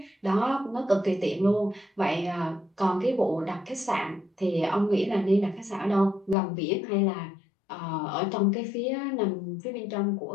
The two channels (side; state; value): right; drops out; at 6.4 s